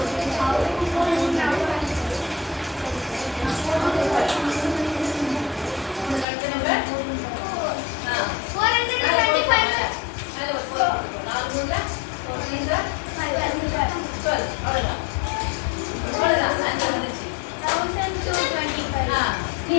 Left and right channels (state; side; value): drops out; right; at 6.2 s